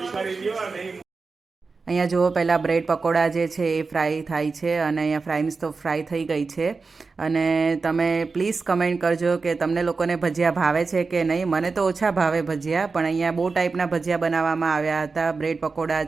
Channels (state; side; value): quieter; left; 4.3 dB